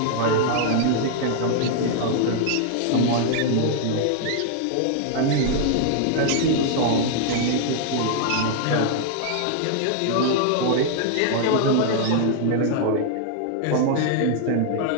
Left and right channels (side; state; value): both; different; correlation -0.01